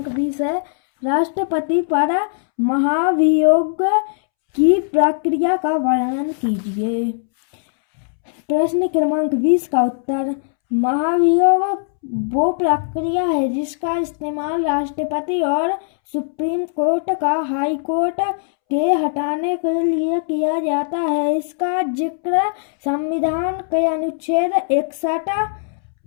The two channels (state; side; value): silent; right; 66 dB below the other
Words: 20 है, राष्ट्रपति पर महाभियोग की प्रक्रिया का वर्णन कीजिए। प्रश्न क्रमांक 20 का उत्तर, महाभियोग वो प्रक्रिया है जिसका इस्तेमाल राष्ट्रपति और सुप्रीम कोर्ट का हाई कोर्ट के हटाने के लिए किया जाता है। इसका जिक्र संविधान के अनुच्छेद 61